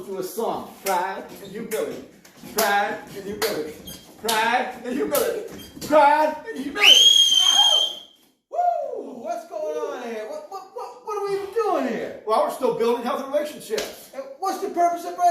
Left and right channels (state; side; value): identical; both; correlation 1.00